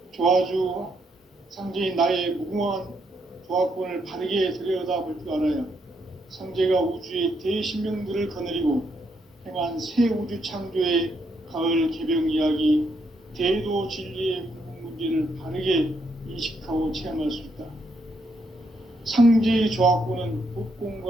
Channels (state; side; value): normal; both; correlation 0.76